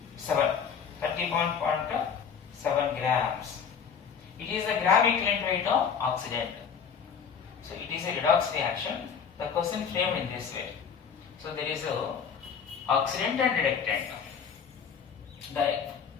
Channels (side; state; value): right; quieter; 6.8 dB